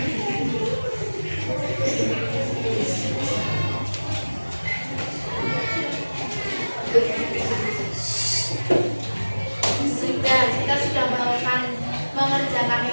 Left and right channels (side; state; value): both; inverted; correlation -1.00